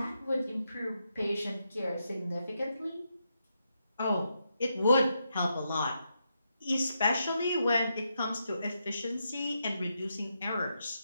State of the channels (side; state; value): both; inverted; correlation -0.83